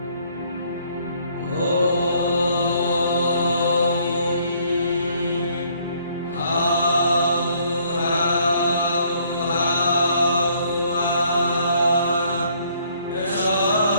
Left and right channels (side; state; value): both; inverted; correlation -0.64